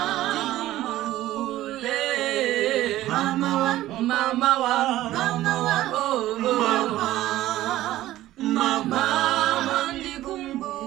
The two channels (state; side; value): quieter; left; 14.9 dB